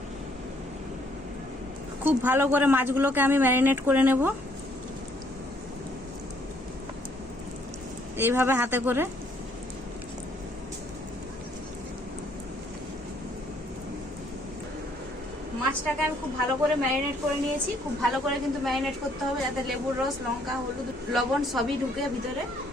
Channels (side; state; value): both; normal; correlation 0.66